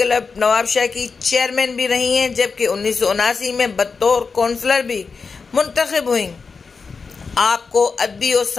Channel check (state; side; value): quieter; right; 4.9 dB